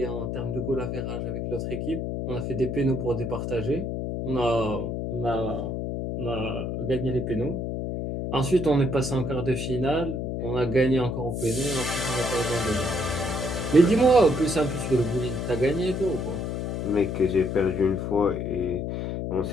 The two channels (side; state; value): left; noise; hum, 3 dB below the sound